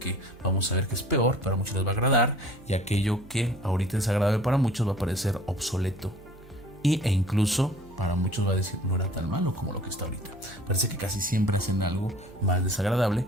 vamos a ver que es peor, para muchos les va a agradar, y aquello que ahorita es agradable para muchos va a parecer obsoleto e incluso para muchos va a decir no era tan malo como lo que está ahorita. Parece que casi siempre hacen algo más desagradable,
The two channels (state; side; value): noise; right; hum, 22 dB below the sound